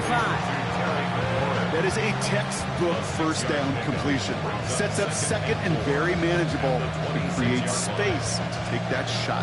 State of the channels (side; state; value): both; identical; correlation 1.00